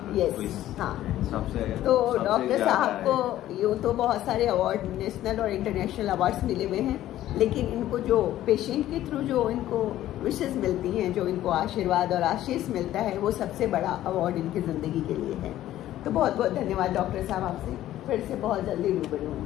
यस, हाँ। सबसे तो डॉक्टर साहब को यूँ तो बहुत सारे अवार्ड, नेशनल और इंटरनेशनल अवार्ड्स मिले हुए हैं, लेकिन इनको जो पेशेंट के थ्रू जो इनको विशेष मिलती हैं, जो इनको आशीर्वाद और आशीष मिलता है, वो सबसे बड़ा अवार्ड इनकी ज़िंदगी के लिए है। तो बहुत बहुत धन्यवाद डॉक्टर साहब, आपसे फिर से बहुत जल्दी रूबरू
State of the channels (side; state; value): right; quieter; 13.5 dB